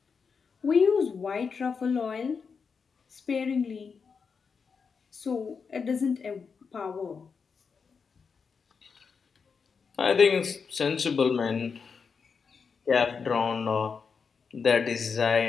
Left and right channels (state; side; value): quieter; right; 5.6 dB